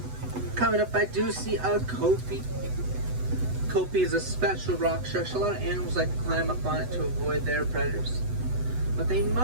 Coming up, I do see a kopi. Kopi is a special rock structure. A lot of animals like to climb up on it to avoid their predators. But they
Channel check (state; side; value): late; left; 8.0 ms